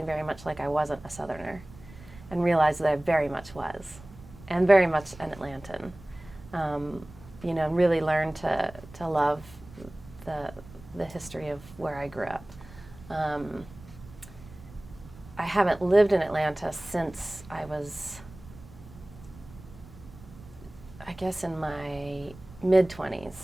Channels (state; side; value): noise; right; rumble, 19 dB below the sound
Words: very much like I wasn't a Southerner, and realized that I very much was, and very much an Atlantan. You know, really learned to love the history of where I grew up. I haven't lived in Atlanta since I was, I guess, in my